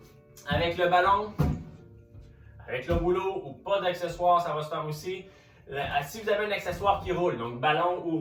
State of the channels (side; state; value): both; identical; correlation 1.00